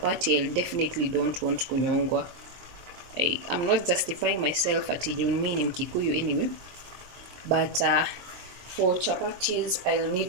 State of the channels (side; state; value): left; late; 23 ms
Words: I definitely don't want kunyongwa. I'm not justifying myself at mimi ni Mkikuyu anyway. But for chapatis, I'll